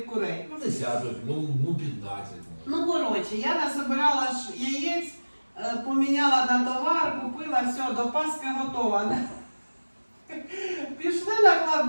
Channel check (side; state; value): both; inverted; correlation -1.00